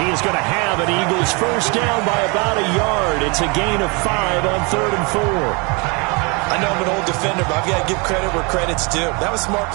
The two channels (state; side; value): quieter; left; 30.2 dB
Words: he is going to have an Eagles first down by about a yard. It's a gain of 5 on 3rd and 4. I know I'm an old defender, but I've got to give credit where credit's due. That was smart